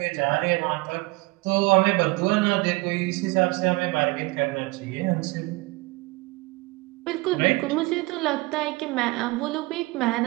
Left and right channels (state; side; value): quieter; left; 23.7 dB